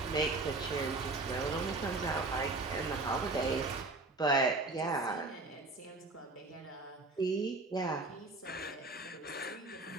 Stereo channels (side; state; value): left; quieter; 3.3 dB